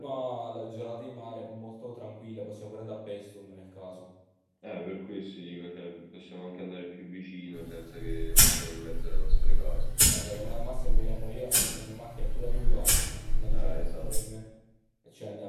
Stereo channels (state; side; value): identical; both; correlation 1.00